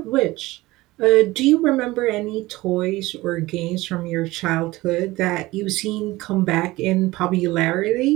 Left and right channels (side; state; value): left; quieter; 19.3 dB